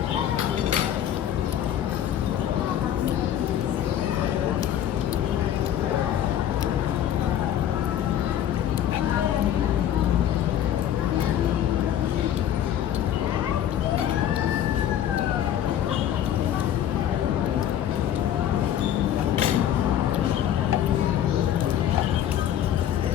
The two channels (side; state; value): right; quieter; 10.7 dB